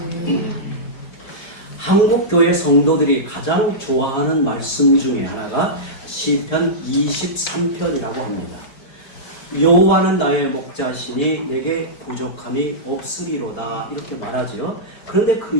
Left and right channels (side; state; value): right; late; 5.2 ms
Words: 한국교회 성도들이 가장 좋아하는 말씀 중에 하나가 시편 23편이라고 합니다. 여호와는 나의 목자시니 내게 부족함이 없으리로다, 이렇게 말하죠. 그런데 그